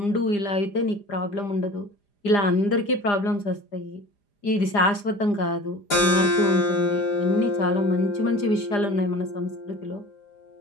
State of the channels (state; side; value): late; right; 4.9 ms